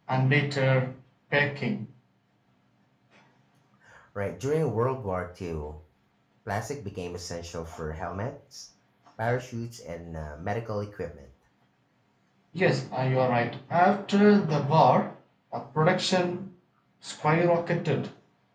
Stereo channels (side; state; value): both; identical; correlation 1.00